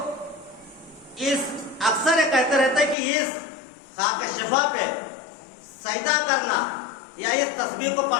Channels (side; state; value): right; drops out; at 3.0 s